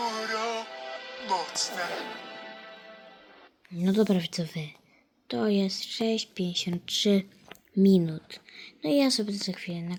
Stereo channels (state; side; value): identical; both; correlation 1.00